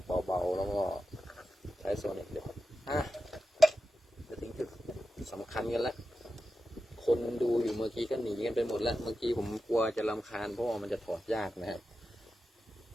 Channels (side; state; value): both; normal; correlation 0.91